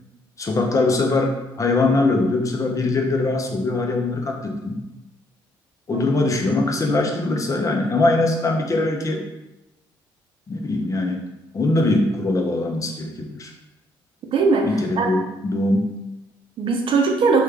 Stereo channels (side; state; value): both; normal; correlation 0.69